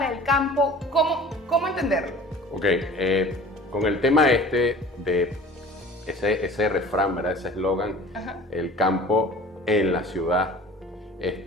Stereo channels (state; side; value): normal; both; correlation 0.44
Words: el campo? ¿Cómo entenderlo? Ok, con el tema de ese refrán, ¿verdad? Ese eslogan, el campo en la ciudad,